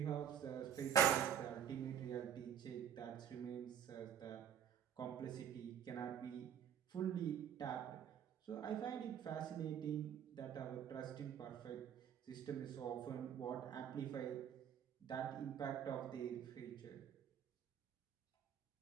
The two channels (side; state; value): left; quieter; 9.1 dB